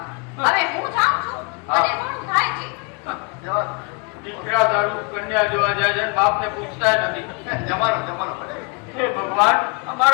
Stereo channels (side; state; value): right; quieter; 33.9 dB